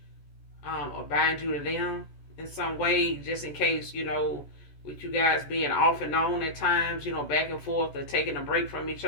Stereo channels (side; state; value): right; late; 14 ms